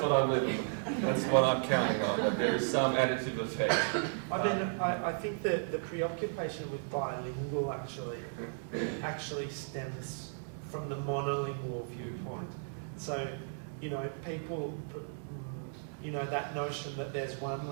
what I'm living. That's what I'm counting on, that there is some additive effect. I think that the preoccupation with bilingual actually stems from the monolingual viewpoint. So, people, that notion that there's one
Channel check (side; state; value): left; silent; digital silence